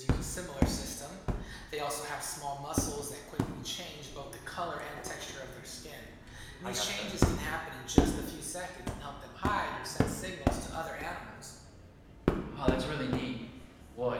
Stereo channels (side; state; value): both; identical; correlation 1.00